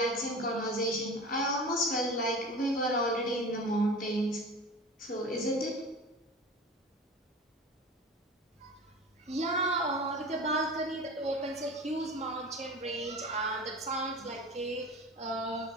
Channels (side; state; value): both; normal; correlation 0.35